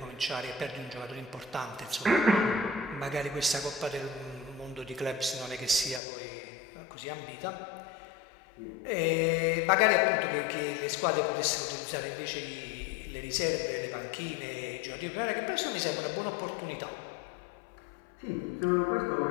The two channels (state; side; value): drops out; right; at 6.0 s